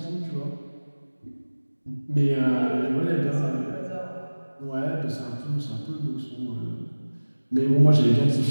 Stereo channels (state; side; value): inverted; both; correlation -1.00